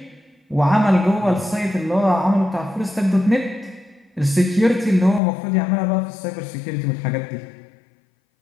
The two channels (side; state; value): right; drops out; at 5.2 s